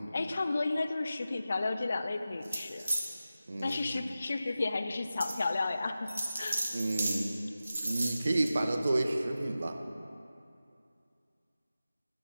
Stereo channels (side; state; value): both; inverted; correlation -0.94